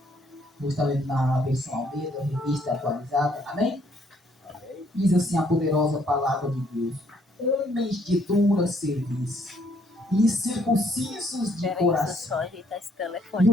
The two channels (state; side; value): normal; both; correlation 0.67